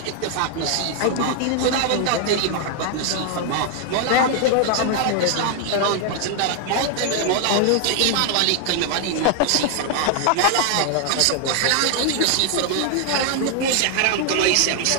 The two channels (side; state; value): both; different; correlation 0.00